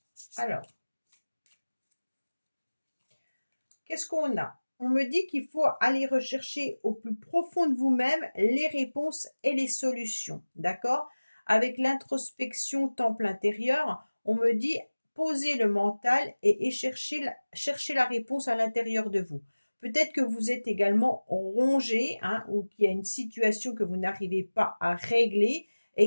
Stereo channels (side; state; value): both; inverted; correlation -1.00